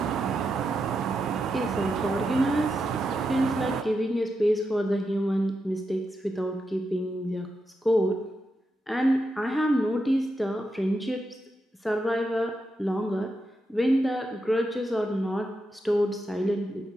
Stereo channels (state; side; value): normal; both; correlation 0.86